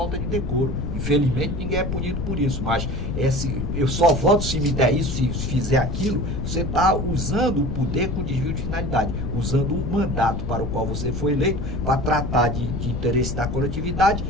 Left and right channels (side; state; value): left; noise; rumble, 3 dB below the sound